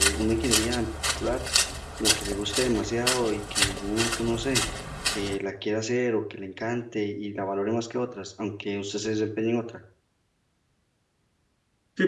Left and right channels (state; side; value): identical; both; correlation 1.00